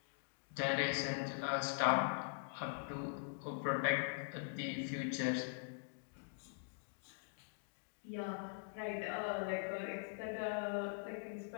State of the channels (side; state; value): right; silent; digital silence